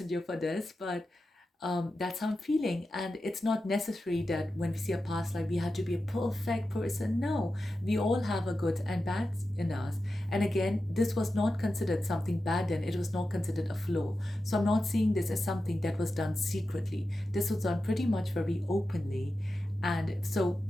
for this, but that's how I'm feeling. And it's not necessary that when we see a past life, we have to be a perfect person. No, we all have a good and bad in us. And again, this was not considered something bad then, it was not considered a flaw. So I'm not seeing this as something that was done secretly. This was done pretty much very openly. And so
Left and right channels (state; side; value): normal; both; correlation 0.91